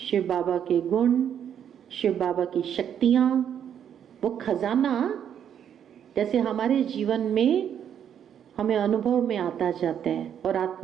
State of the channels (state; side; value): quieter; left; 9.0 dB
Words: बाबा के गुण, शिव बाबा की शक्तियां, वो खजाना जैसे हमारे जीवन में हमें अनुभव में आता जाता है और